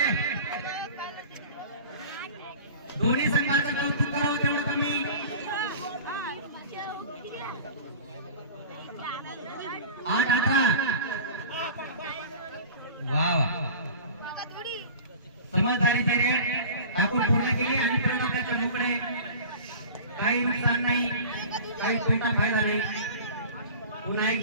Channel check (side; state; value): both; inverted; correlation -0.39